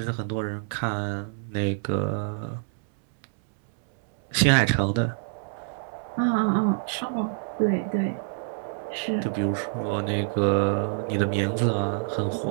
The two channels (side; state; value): left; silent; 61 dB below the other